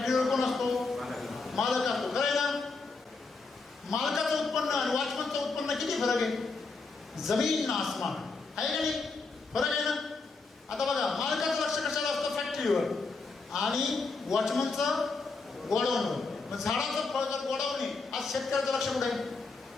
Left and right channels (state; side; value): quieter; right; 4.0 dB